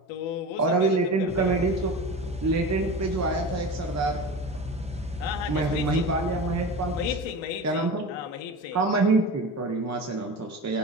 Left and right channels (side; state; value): both; normal; correlation 0.30